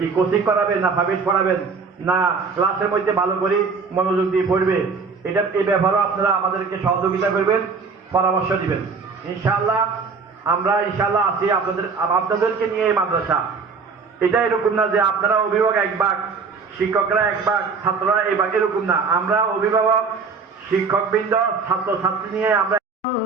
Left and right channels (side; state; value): left; quieter; 4.9 dB